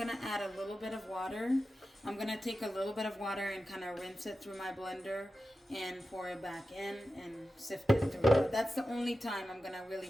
add a little bit of water. I'm gonna take a little bit of water and kind of rinse it through my blender and pour it back in and sift it through. That's the only time I'm gonna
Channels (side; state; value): both; normal; correlation 0.92